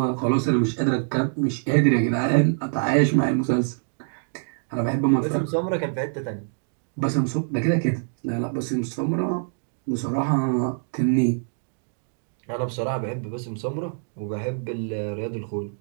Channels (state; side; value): silent; left; 62 dB below the other